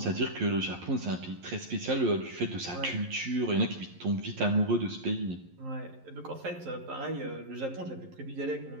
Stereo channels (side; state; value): left; late; 11 ms